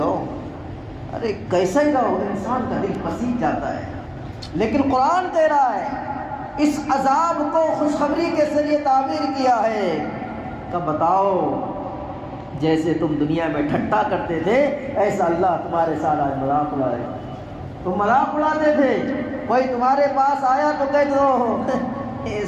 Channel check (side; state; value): both; identical; correlation 1.00